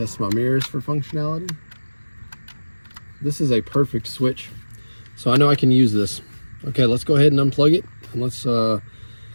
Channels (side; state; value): both; inverted; correlation -1.00